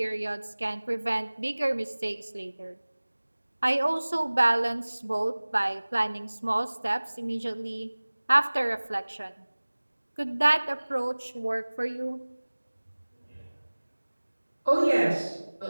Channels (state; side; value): inverted; both; correlation -1.00